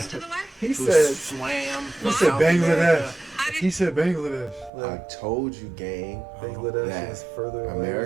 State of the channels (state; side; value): drops out; left; at 4.7 s